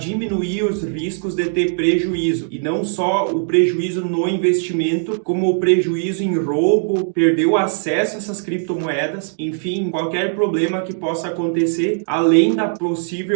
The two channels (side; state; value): left; silent; digital silence